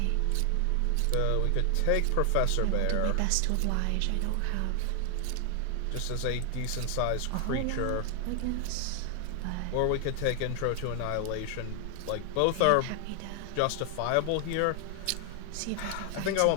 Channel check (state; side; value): different; both; correlation 0.00